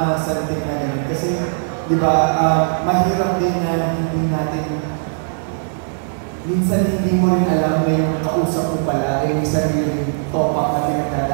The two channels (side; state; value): left; silent; digital silence